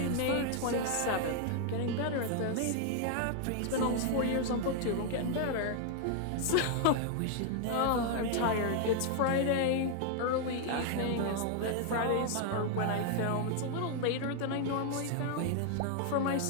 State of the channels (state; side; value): different; both; correlation 0.00